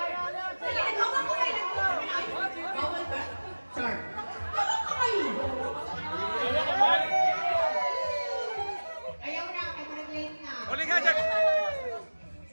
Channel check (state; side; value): inverted; both; correlation -1.00